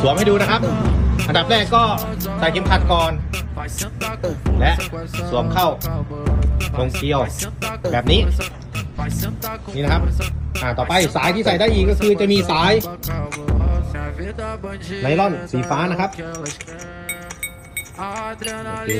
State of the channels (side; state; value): both; identical; correlation 1.00